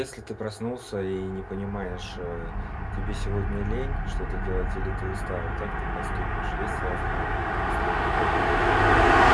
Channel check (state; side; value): identical; both; correlation 1.00